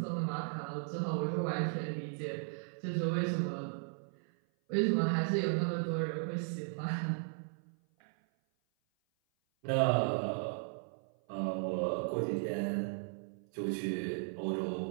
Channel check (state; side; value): silent; left; 54 dB below the other